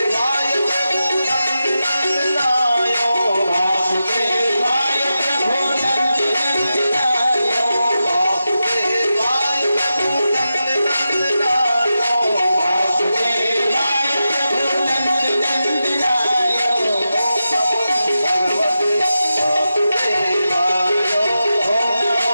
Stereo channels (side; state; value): both; inverted; correlation -0.90